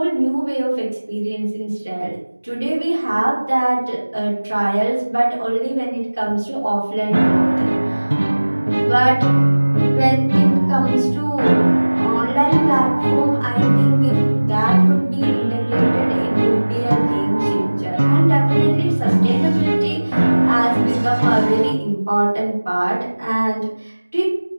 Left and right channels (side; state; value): both; inverted; correlation -1.00